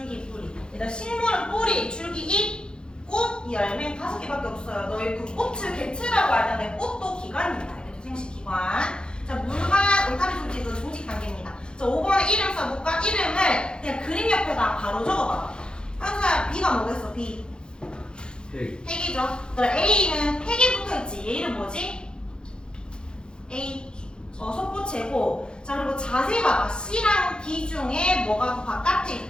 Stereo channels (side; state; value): right; late; 0.049 ms